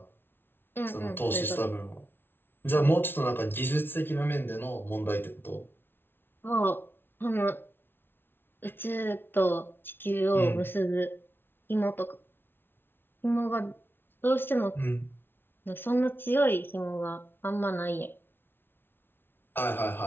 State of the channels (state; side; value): late; right; 0.11 ms